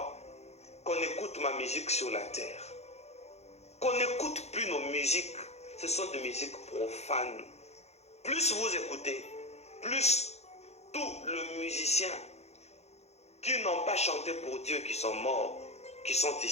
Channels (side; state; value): right; late; 0.31 ms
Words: qu'on écoute ma musique sur la terre. Qu'on n'écoute plus nos musiques. Ce sont des musiques profanes. Plus vous écoutez, plus tous les musiciens qui n'ont pas chanté pour Dieu, qui sont morts, qui sont